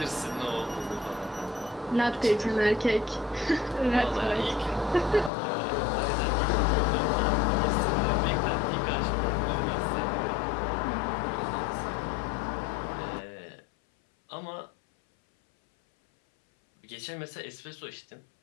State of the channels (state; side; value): drops out; right; at 5.3 s